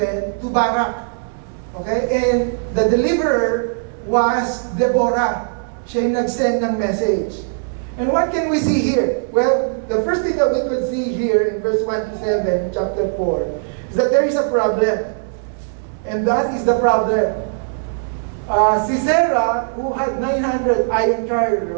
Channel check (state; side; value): silent; left; 66 dB below the other